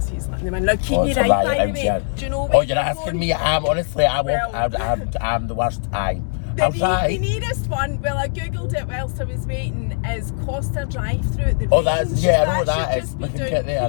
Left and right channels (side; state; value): right; silent; digital silence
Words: he's letting them in. Now, keep me right, by the way. Do you know where you're asking me? I'm the worst. The nearest one, well, I googled it whilst I was waiting, is Costa Drive-through at the range. I know that is. Should We just can be get down there,